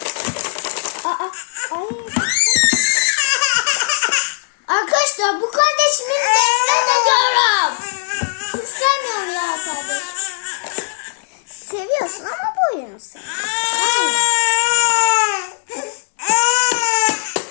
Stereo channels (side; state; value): right; silent; digital silence